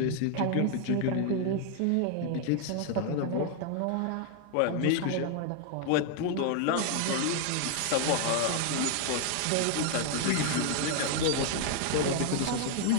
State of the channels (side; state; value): both; different; correlation 0.00